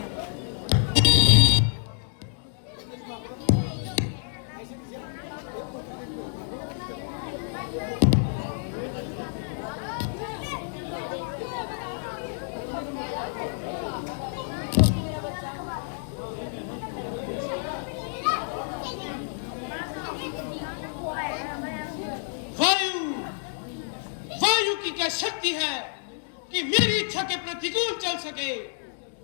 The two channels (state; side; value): silent; right; digital silence